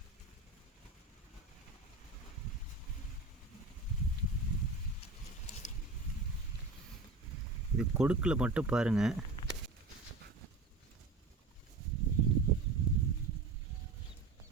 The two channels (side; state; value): left; quieter; 3.6 dB